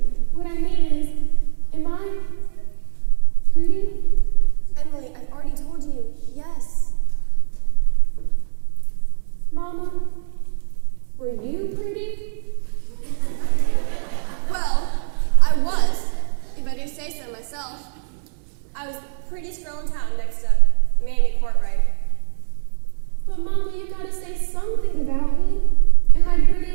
What I mean is, am I pretty? Emily, I've already told you, yes. Mama, were you pretty? Well, I was, if I do say so myself. I was the prettiest girl in town next to Mamie Courtright. But Mama, you gotta say something about me. Am I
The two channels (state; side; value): silent; left; digital silence